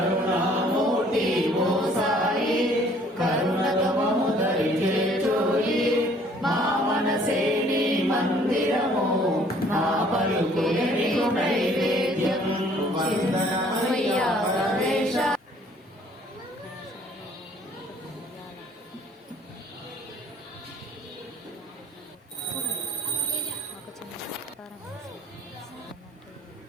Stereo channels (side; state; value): both; normal; correlation 0.58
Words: ఓ సాయి కరుణతో మము దరి చేర్చోయి మా మనసే నీ మందిరము నా పలుకులే నీకు నైవేద్యం వందనమయ్యా గణేశ. ఒక చిన్న సత్కారం వేసేది ఏంటంటే